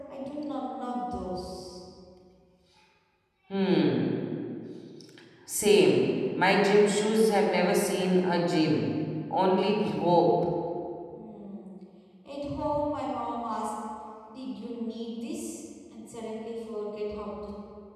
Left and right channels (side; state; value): both; identical; correlation 1.00